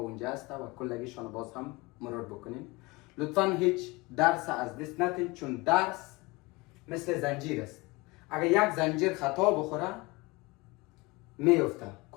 هست و کلگیشان باز هم مرور بکنین. لطفا هیچ درس از دست ندین، چون درس مثل زنجیر است. اگر یک زنجیر خطا بخوره میفته،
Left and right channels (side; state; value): right; quieter; 23.2 dB